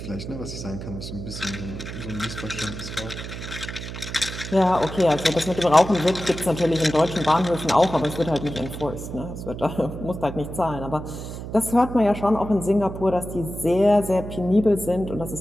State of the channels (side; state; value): right; noise; hum, 9 dB below the sound